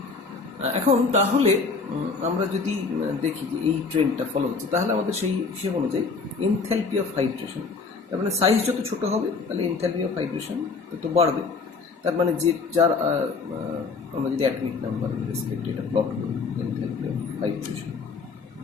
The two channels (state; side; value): quieter; right; 4.5 dB